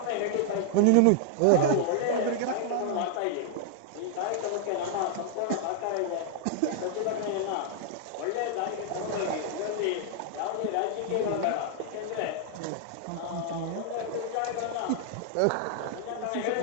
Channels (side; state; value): both; different; correlation -0.01